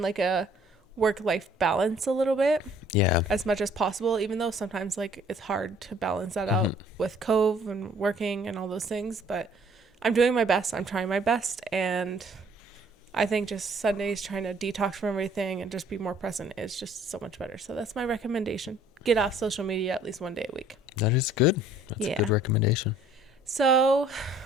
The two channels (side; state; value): both; normal; correlation 0.58